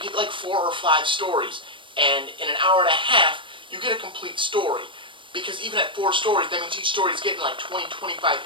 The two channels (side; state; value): left; late; 0.25 ms